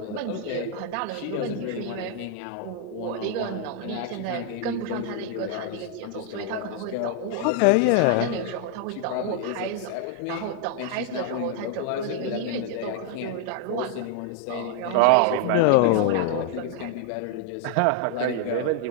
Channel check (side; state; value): both; different; correlation 0.00